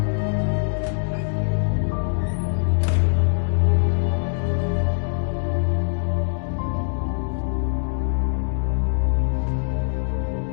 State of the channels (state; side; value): silent; right; digital silence